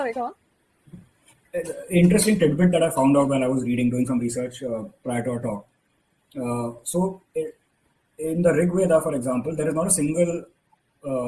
go on. Interesting tidbit that I found out while I was doing some research prior to our talk. In the Rig Veda, for example, there is not a single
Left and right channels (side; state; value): both; identical; correlation 1.00